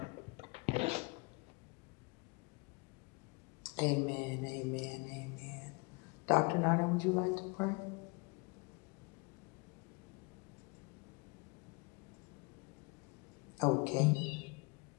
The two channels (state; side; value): quieter; right; 29.7 dB